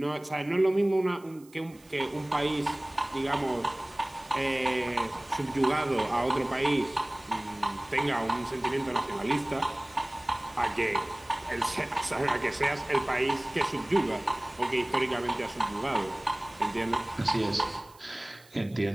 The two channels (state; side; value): noise; right; hiss, 26 dB below the sound